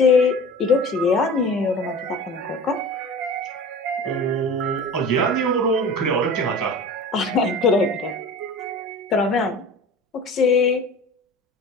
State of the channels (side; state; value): both; normal; correlation 0.38